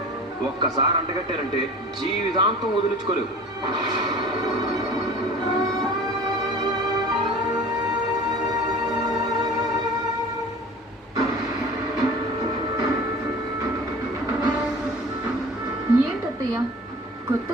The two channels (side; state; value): both; normal; correlation 0.41